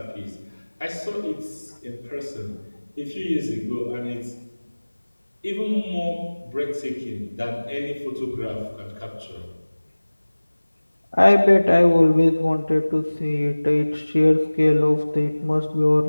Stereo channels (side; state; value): both; inverted; correlation -1.00